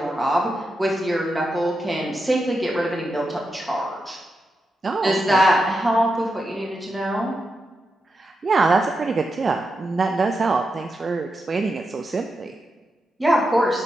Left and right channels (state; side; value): normal; both; correlation 0.87